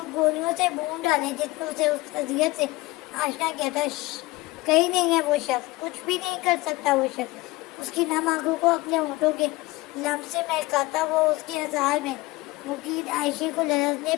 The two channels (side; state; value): right; quieter; 20.9 dB